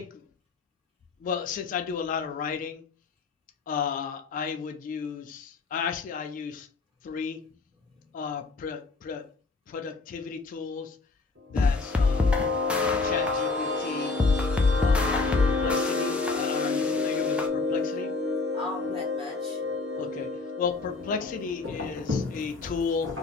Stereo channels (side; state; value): right; quieter; 3.9 dB